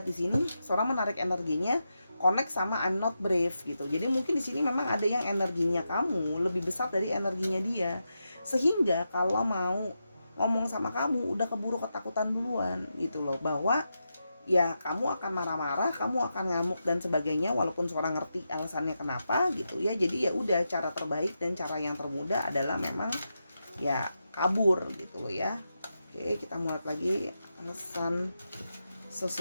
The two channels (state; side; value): inverted; both; correlation -0.87